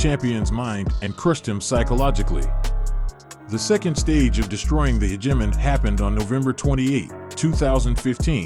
mind and crushed him psychologically. The second stage of destroying the hegemon happened on November 28,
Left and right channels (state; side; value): identical; both; correlation 1.00